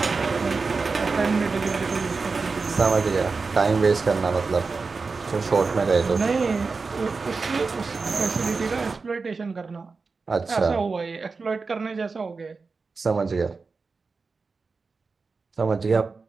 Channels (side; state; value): left; quieter; 4.4 dB